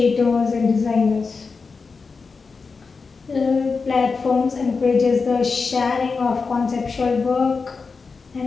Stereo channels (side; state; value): right; quieter; 4.7 dB